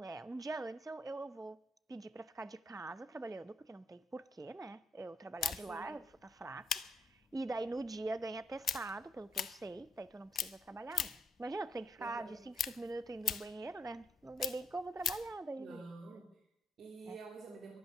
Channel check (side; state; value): both; normal; correlation 0.75